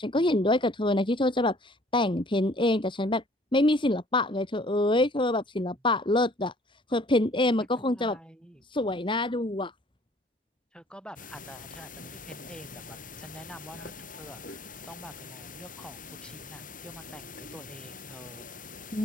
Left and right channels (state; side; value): normal; both; correlation 0.56